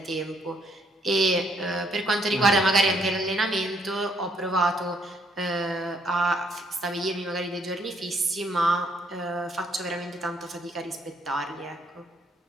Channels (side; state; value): both; normal; correlation 0.70